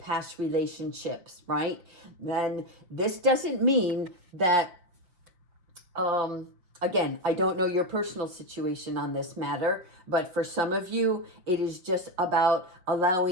relationships, right? Then this doesn't mean that, again, I don't know your personal situation on this matter, but for some of you, it is just about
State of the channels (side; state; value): left; late; 5.8 ms